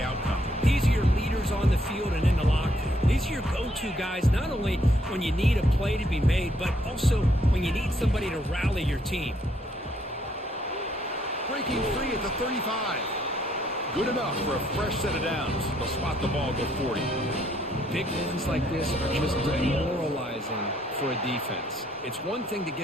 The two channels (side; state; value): both; normal; correlation 0.69